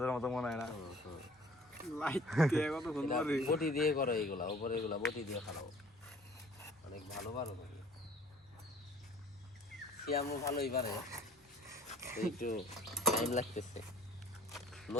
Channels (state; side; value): normal; both; correlation 0.52